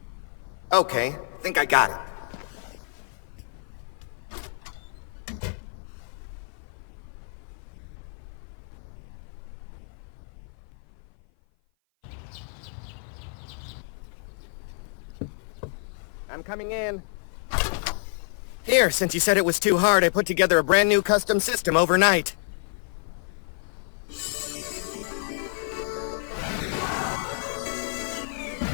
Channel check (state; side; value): silent; right; 55 dB below the other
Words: Okay, think I got it. I'm coming in. Here, since you said it was too hard, I put together a brand new custom system overnight.